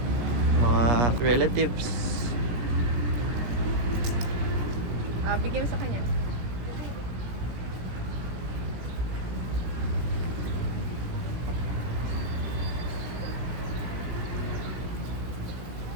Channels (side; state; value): left; late; 16 ms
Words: mga relatives. Bigyan mo sa kanya.